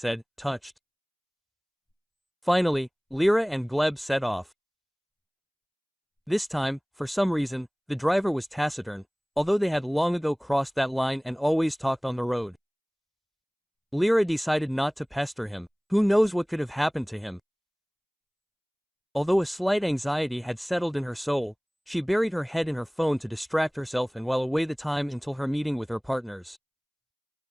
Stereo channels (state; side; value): identical; both; correlation 1.00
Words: touched. Finally, Lera and Gleb set off. This time, for some reason, the driver was taciturn, although they had long ago crossed that line and always talked on the road. Lera decided not to pester him. Who knows what could have happened to him? Although a slight anxiety had settled in her soul, she buried her head in her phone to distract herself and while away the time until her meeting with her partners.